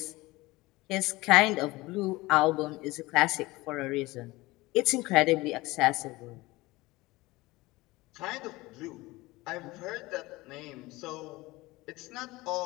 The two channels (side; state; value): right; quieter; 20.6 dB